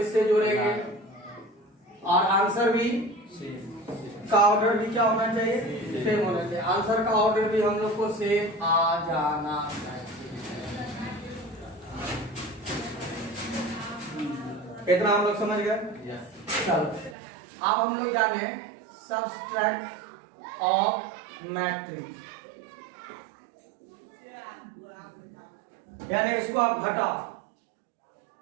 जोड़ेंगे, और आंसर भी का ऑर्डर भी क्या होना चाहिए? सेम होना चाहिए। आंसर का ऑर्डर भी हम लोग को सेम आ जाना चाहिए। इतना हम लोग समझ गए? चलो अब हम लोग जाने सबट्रैक्ट ऑफ मैट्रिक्स, यानी इसको आप घटाओ,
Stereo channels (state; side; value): drops out; left; at 17.2 s